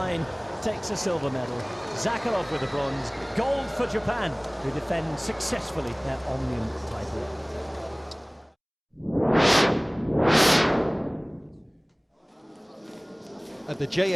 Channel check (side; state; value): both; identical; correlation 1.00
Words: takes a silver medal. Zakharov with the bronze. Gold for Japan, who defend successfully their Omnium title. At the